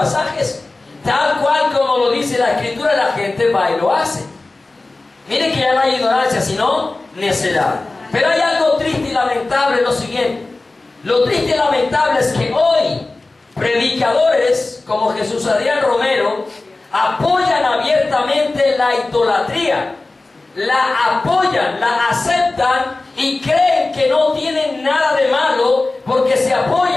Tal cual como lo dice la Escritura, la gente va y lo hace. Miren que ya no hay ignorancia, sino necedad. Pero hay algo triste y lamentable, lo siguiente. Lo triste y lamentable es que hoy predicadores como Jesús Adrián Romero apoyan abiertamente la idolatría. La apoyan, la aceptan y creen que no tienen nada de malo porque se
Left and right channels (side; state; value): right; quieter; 3.2 dB